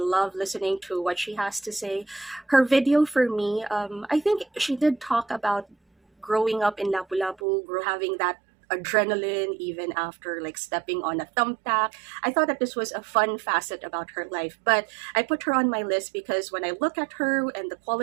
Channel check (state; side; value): drops out; left; at 7.4 s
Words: listening to what she has to say. Her video for me, I think she did talk about growing up in Lapu-Lapu, having that adrenaline even after like stepping on a thumbtack. I thought that this was a fun facet about her life, but I put her on my list because when I look at her and the